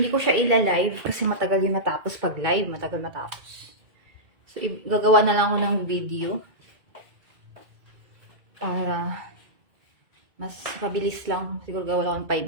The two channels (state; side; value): late; left; 2.2 ms